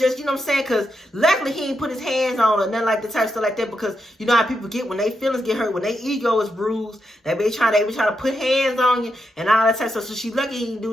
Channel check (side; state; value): both; normal; correlation 0.84